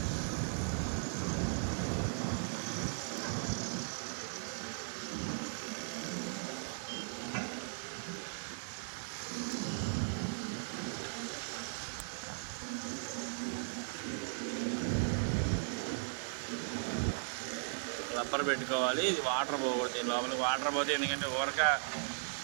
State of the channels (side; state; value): left; silent; digital silence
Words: రబ్బర్ పెట్టుకోవాలి. ఇది వాటర్ పోకూడదు దీని లోపలికి. వాటర్ పోతే ఎందుకంటే ఊరక